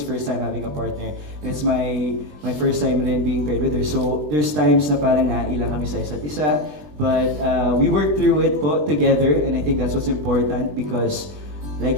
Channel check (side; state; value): left; late; 20 ms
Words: first time having a partner. It's my first time rin being paired with her. So, there's times na parang nailang kami sa isa't isa. But we worked through it po together and I think that's what's important because